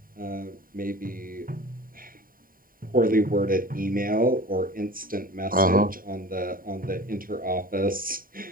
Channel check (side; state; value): left; late; 0.41 ms